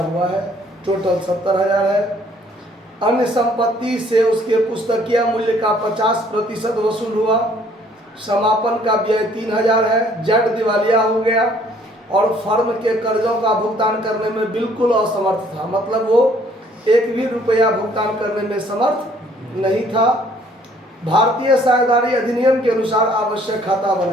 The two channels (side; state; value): both; normal; correlation 0.61